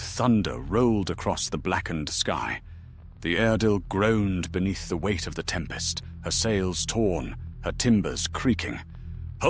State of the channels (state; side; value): identical; both; correlation 1.00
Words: thunder rolled across the blackened sky. The Eardil groaned beneath the weight of the tempest, her sails torn, her timbers creaking.